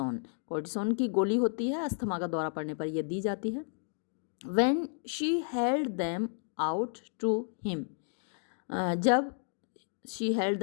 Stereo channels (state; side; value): silent; right; 56 dB below the other